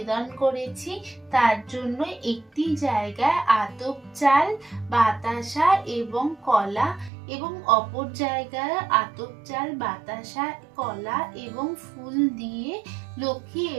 করেছি। তার জন্য একটি জায়গায় আতপ চাল বাতাসা এবং কলা এবং অপর জায়গায় আতপ চাল বাতাসা কলা এবং ফুল দিয়ে লক্ষ্মী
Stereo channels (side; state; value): left; drops out; at 7.1 s